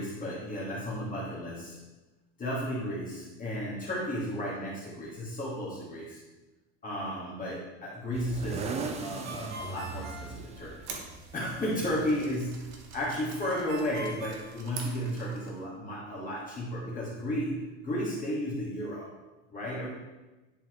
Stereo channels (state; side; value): normal; both; correlation 0.37